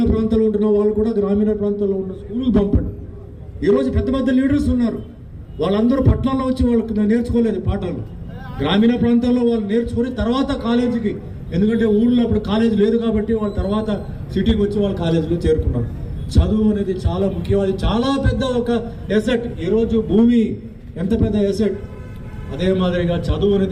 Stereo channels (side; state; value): both; identical; correlation 1.00